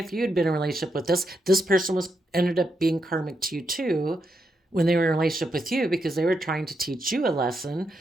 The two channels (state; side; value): normal; both; correlation 0.82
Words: you had been in a relationship with this person ended up being karmic to you too when they were in a relationship with you, because they were trying to teach you a lesson,